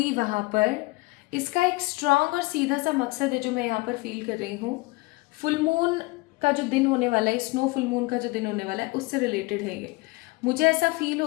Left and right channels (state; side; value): quieter; right; 23.6 dB